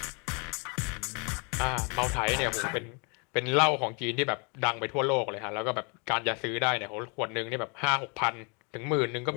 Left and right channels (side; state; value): right; quieter; 33.4 dB